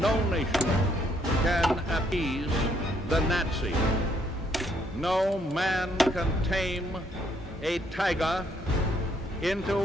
nation can appease the Nazis. No man can tame a tiger into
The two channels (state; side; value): normal; both; correlation 0.70